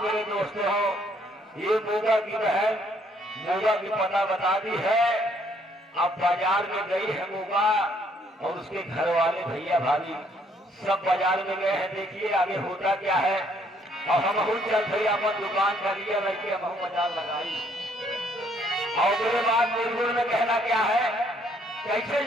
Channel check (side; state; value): both; normal; correlation 0.66